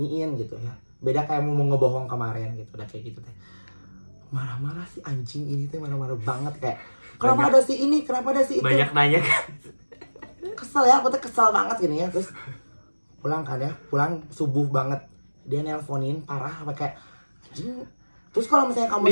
gitu ya. Beda kayak mau ngebohong kemarin gitu, udah kayak gitu teh. Marah-marah si anjing ini tuh marah-marah banget kayak kenapa ada si ini, kenapa ada si itu. banyak nanya kan. Kesel ya, aku tuh kesel banget gini ya. Terus pulang subuh banget, dia nelponin parah apa kayak anjing. Terus kalau misalnya kamu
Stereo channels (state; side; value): inverted; both; correlation -1.00